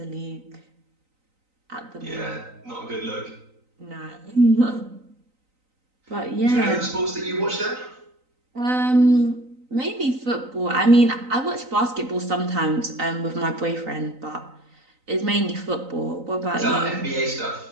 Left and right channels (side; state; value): left; late; 3.9 ms